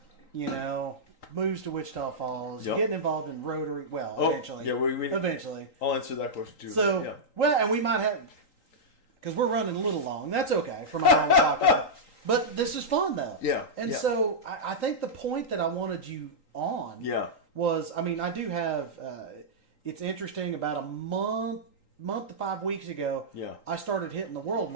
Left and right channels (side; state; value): right; late; 3.8 ms